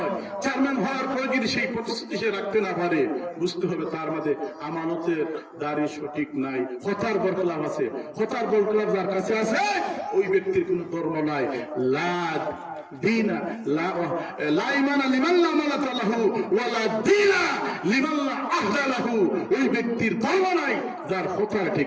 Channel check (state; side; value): identical; both; correlation 1.00